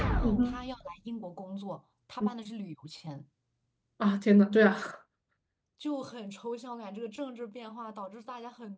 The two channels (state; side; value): identical; both; correlation 1.00